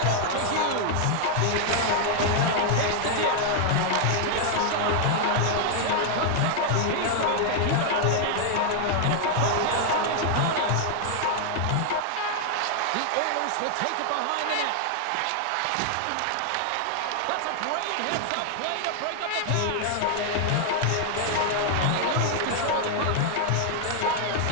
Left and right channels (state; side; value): different; both; correlation 0.00